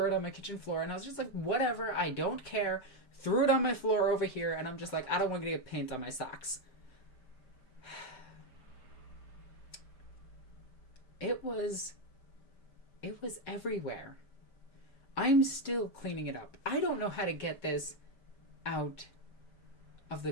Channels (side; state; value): right; late; 5.1 ms